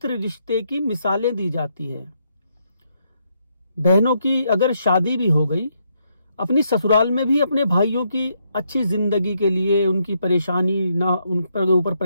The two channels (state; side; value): inverted; both; correlation -0.76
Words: रिश्ते की मिसालें दी जाती है। बहनों की अगर शादी भी हो गई, अपनी ससुराल में भी अपने भाइयों की अच्छी जिंदगी के लिए, उनकी परेशानी ना, उन पर ऊपर